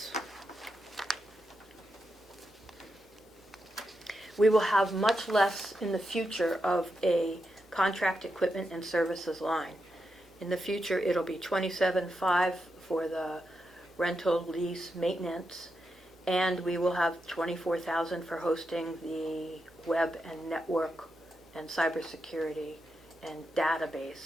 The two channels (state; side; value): normal; both; correlation 0.86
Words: We will have much less in the future of a contract equipment and services line. In the future, it'll be $27,500 for the rental, lease, maintenance, and we will have $24,000 for hosting the web and network and cybersecurity and